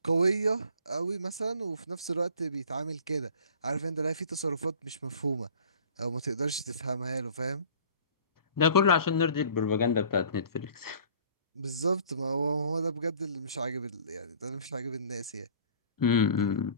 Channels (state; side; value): inverted; both; correlation -0.48